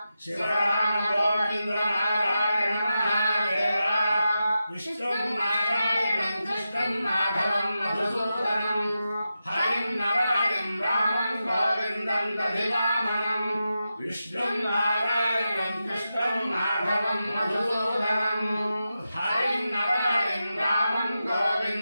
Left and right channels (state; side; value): inverted; both; correlation -0.90